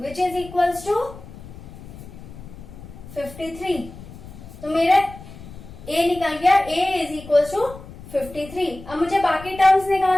which is equal to 53. तो मेरा a निकल गया, a इज इक्वल टू 53. अब मुझे बाकी टर्म्स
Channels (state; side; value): noise; left; rumble, 16 dB below the sound